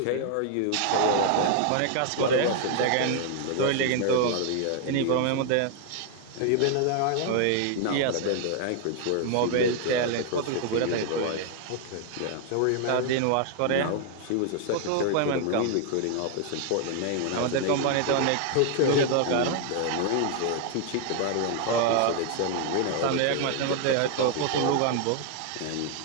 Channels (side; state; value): both; different; correlation 0.00